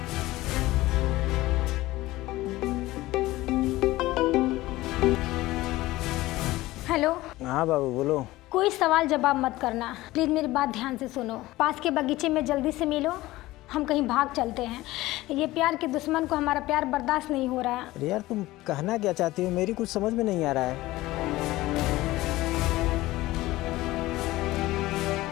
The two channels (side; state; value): right; quieter; 17.9 dB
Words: हेलो। हाँ बाबू बोलो। कोई सवाल जवाब मत करना, प्लीज मेरी बात ध्यान से सुनो। पास के बगीचे में जल्दी से मिलो, हम कहीं भाग चलते हैं। ये प्यार के दुश्मन को हमारा प्यार बर्दाश्त नहीं हो रहा है। अरे यार, तुम कहना क्या चाहती हो? मेरी कुछ समझ में नहीं आ रहा है।